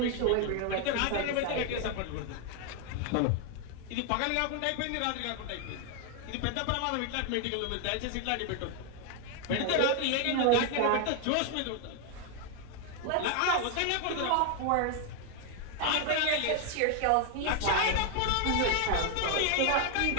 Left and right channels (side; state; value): both; different; correlation 0.00